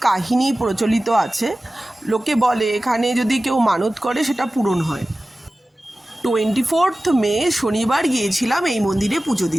প্রচলিত আছে। লোকে বলে এখানে যদি কেউ মানত করে সেটা পূরণ হয়। 24 মে শনিবার গিয়েছিলাম এই মন্দিরে পুজো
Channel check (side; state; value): both; normal; correlation 0.96